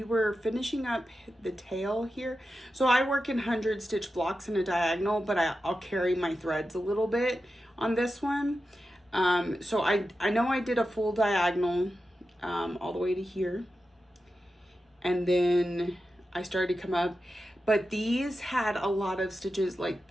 were finishing up the tail here. So I work in 100 stitch blocks in a diagonal, but I'll carry my threads a little bit on this one. So I know I did a full diagonal all the way to here. And then I started to come up. But these had a lot of stitches. Like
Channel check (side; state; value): both; normal; correlation 0.91